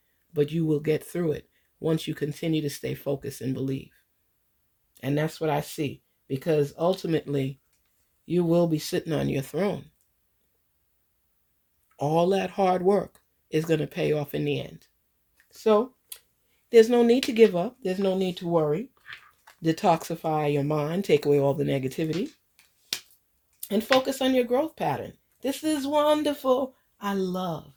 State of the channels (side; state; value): both; identical; correlation 1.00